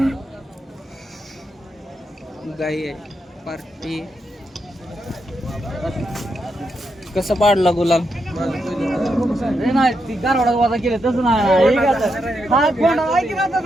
गाई आहे पार्टी. कसा पाडला गुलाल?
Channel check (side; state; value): both; normal; correlation 0.83